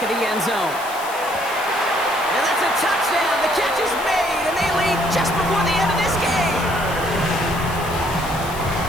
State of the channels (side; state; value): left; noise; hiss, 14 dB below the sound